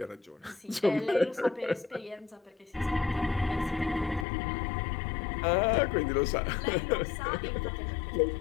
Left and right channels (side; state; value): right; drops out; at 4.2 s